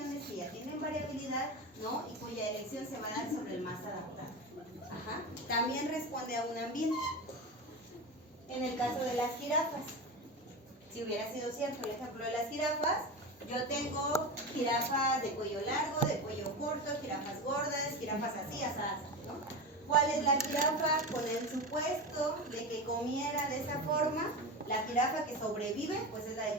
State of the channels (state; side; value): normal; both; correlation 0.23